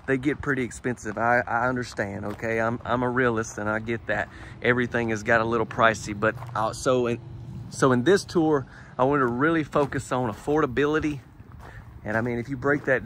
they get pretty expensive. I understand, okay? I'm a realist and I get that. Everything has got a little pricey, but so in this tour, I want to really focus on affordability. And I mean, if you break that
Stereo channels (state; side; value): identical; both; correlation 1.00